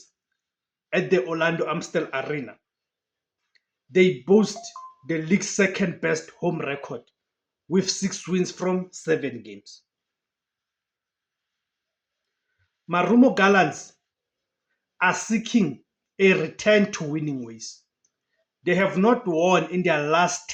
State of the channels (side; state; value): both; identical; correlation 1.00